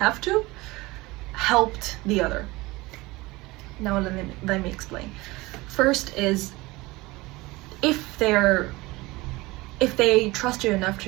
helped the other. Now let me explain. First is if they trust you enough to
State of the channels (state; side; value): quieter; left; 21.4 dB